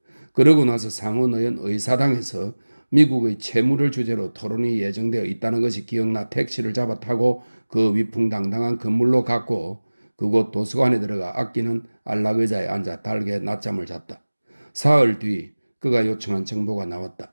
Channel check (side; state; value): both; inverted; correlation -1.00